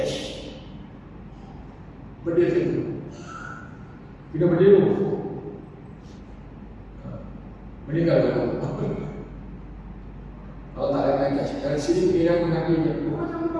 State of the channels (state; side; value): identical; both; correlation 1.00